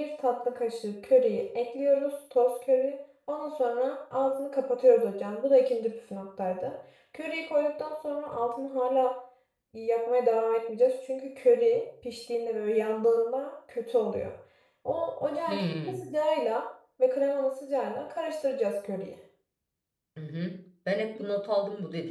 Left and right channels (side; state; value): both; identical; correlation 1.00